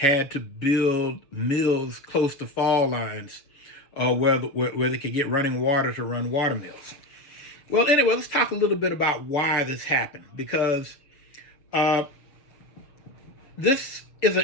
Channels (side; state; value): right; late; 6.6 ms